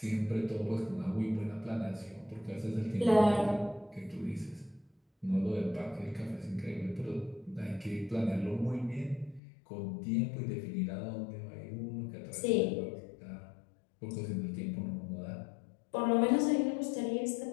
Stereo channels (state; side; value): drops out; right; at 9.4 s